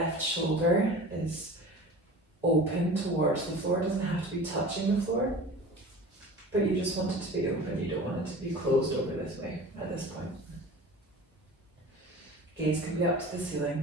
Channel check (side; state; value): both; normal; correlation 0.38